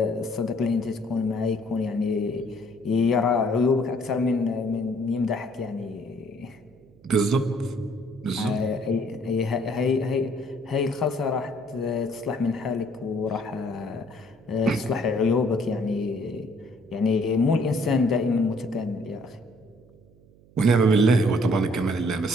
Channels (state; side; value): noise; right; hum, 27 dB below the sound